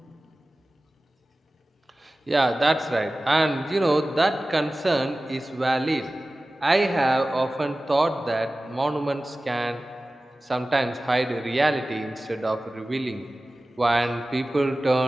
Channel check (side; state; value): both; normal; correlation 0.96